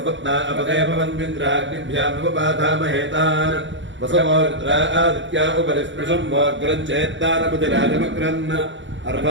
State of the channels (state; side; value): late; left; 0.54 ms